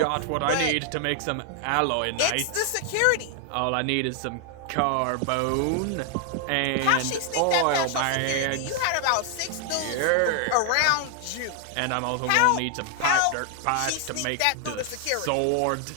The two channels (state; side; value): different; both; correlation 0.00